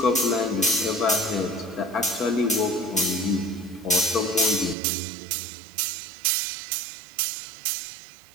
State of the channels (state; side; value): drops out; left; at 4.8 s